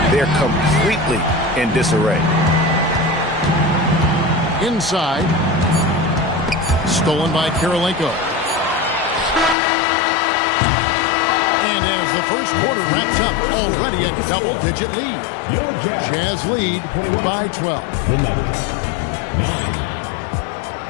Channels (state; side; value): drops out; right; at 9.6 s